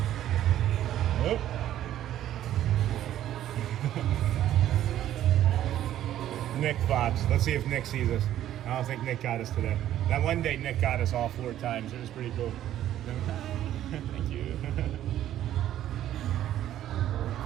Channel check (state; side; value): quieter; left; 12.2 dB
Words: Nick vibes. Let's see if Nick sees us. I don't think Nick got us today. That one day Nick got us all 4 times. It was pretty cool. Thank you.